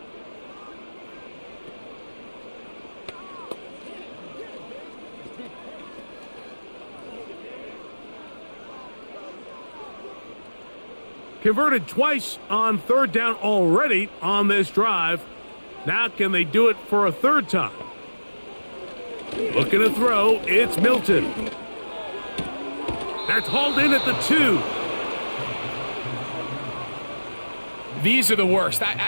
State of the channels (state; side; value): inverted; both; correlation -1.00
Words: Converted twice on third down already on this drive. Now can they do it for a third time? Looking to throw, it's Milton. That's hauled in at the 2. These are the worst. I